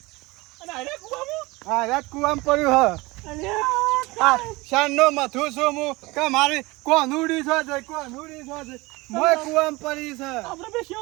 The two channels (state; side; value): quieter; left; 22.5 dB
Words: અને અરે કુવામાં હા રાત કુવામ પડ્યું હ. અલ્યા શાનનો મથું છું હું કે મારી કોનુડી છો છે કોનુડી છો છે મોય કુવામ પડી છે. આપણે બે